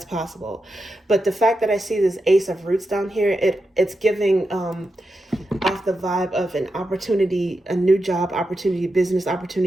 possible. But the fact that I see this Ace of Roots down here, it's giving off the vibe of an opportunity, a new job opportunity, business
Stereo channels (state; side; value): normal; both; correlation 0.88